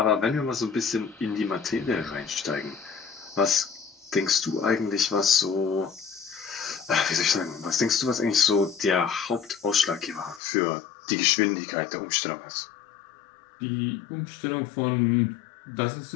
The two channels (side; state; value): right; drops out; at 10.4 s